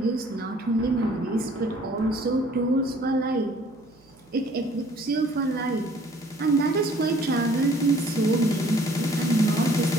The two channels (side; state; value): right; noise; hum, 30 dB below the sound